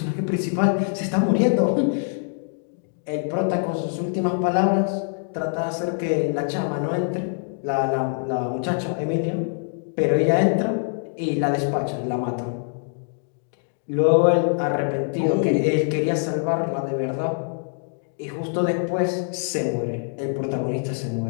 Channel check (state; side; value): silent; right; digital silence